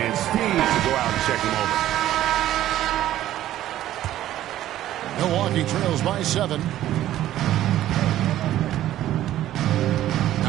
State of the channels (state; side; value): quieter; left; 13.2 dB